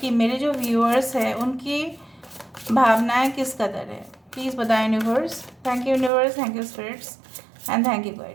मेरे जो व्यूअर्स हैं उनकी भावनाएं किस कदर है, प्लीज़ बताएं universe. Thank you universe, thank you spirits and thank you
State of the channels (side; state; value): left; drops out; at 6.1 s